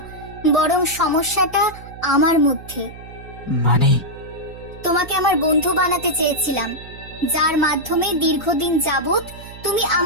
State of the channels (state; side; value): noise; right; hum, 16 dB below the sound